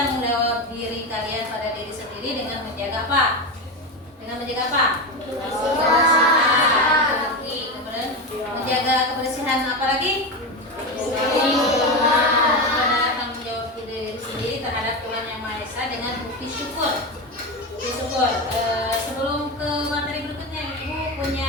jawab diri kalian pada diri sendiri dengan menjaga apa? Dengan menjaga apa? Kebersihan. Kemudian menjaga kebersihan apa lagi? Tanggung jawab diri sendiri terhadap Tuhan Yang Maha Esa dengan bukti syukur. Sebelum ke materi berikutnya, Ibu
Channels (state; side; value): normal; both; correlation 0.17